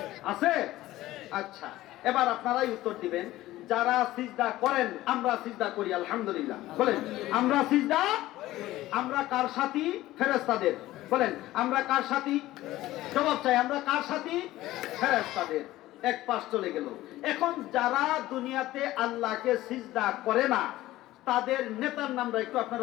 আছে? আচ্ছা, এবার আপনারাই উত্তর দিবেন। যারা সিজদা করেন, আমরা সিজদা করি আলহামদুলিল্লাহ। বলেন আমরা সিজদা, আমরা কার সাথী? ফেরেশতাদের। বলেন আমরা কার সাথী? জবাব চাই, আমরা কার সাথী? ফেরেশতাদের। এক পাশ চলে গেল। এখন যারা দুনিয়াতে আল্লাহকে সিজদা করে না, তাদের নেতার নামটা একটু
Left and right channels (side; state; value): right; quieter; 16.1 dB